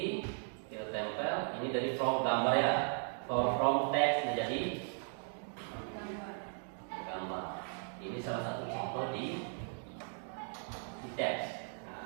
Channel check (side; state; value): left; silent; 53 dB below the other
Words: kita tempel. Ini dari from gambar ya, from teks menjadi gambar. Ini salah satu contoh di teks.